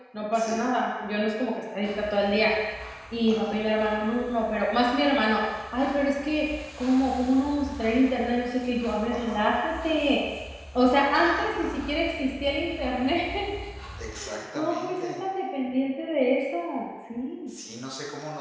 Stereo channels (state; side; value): identical; both; correlation 1.00